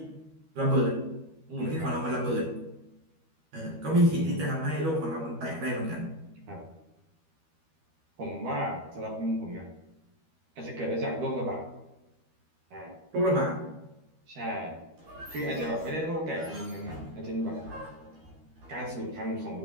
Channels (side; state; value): left; late; 13 ms